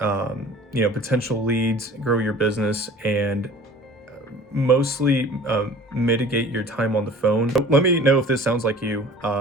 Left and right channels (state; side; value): normal; both; correlation 0.45